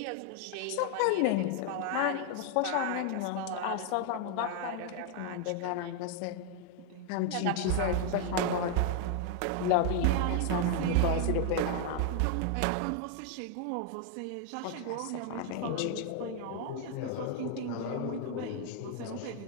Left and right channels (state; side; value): different; both; correlation 0.00